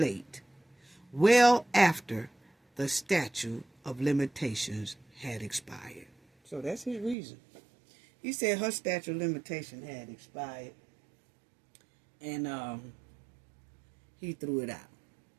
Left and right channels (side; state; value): left; drops out; at 7.2 s